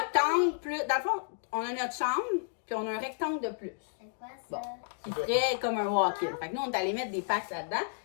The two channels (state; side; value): silent; right; digital silence